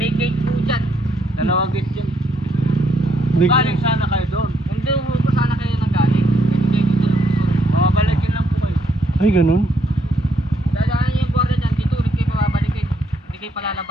gate po dyan. Dalawang gate dyan. Di- Galing sana kayo doon. Hindi ho po sana kayo nanggaling. Kasi kayo dito lang po. Mamabalikin lang po kayo. Ay, ganun. Dadaan niyo yung guardia dyan. Dito ulit kayo pababalikin. Hindi kayo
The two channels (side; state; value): both; normal; correlation 0.73